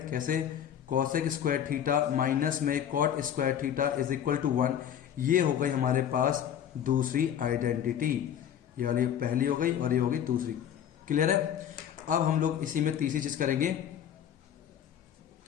कैसे, कॉसेक स्क्वायर थीटा माइनस में cot square theta is equal to 1। ये हो गई हमारे पास दूसरी आइडेंटिटी, ये वाली पहली हो गई और ये हो गई दूसरी। क्लियर है? अब हम लोग इसी में तीसरी चीज करेंगे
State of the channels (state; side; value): quieter; right; 9.6 dB